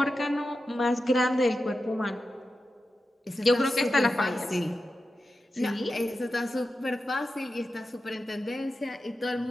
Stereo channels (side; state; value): both; normal; correlation 0.91